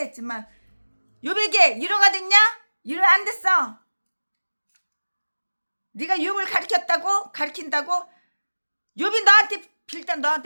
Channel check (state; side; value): inverted; both; correlation -1.00